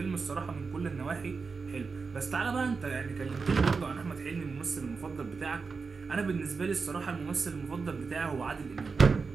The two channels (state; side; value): quieter; left; 4.8 dB